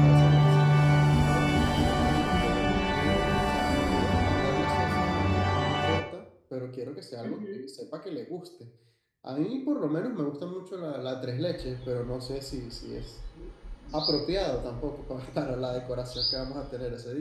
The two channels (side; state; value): both; identical; correlation 1.00